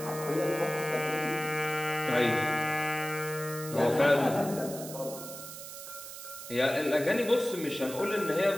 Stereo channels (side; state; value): right; noise; hiss, 11 dB below the sound